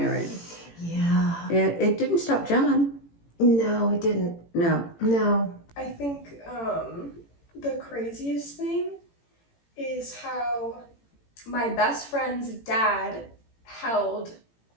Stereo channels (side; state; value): right; late; 18 ms